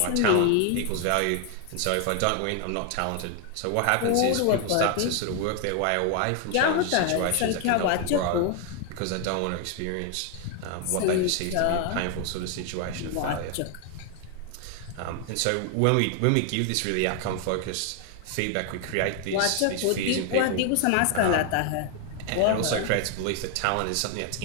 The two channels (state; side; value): different; both; correlation 0.01